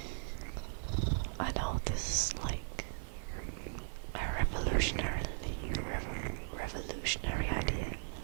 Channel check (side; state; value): left; silent; 53 dB below the other